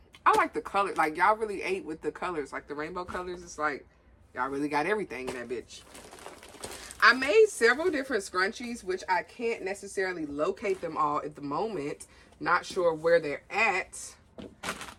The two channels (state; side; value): identical; both; correlation 1.00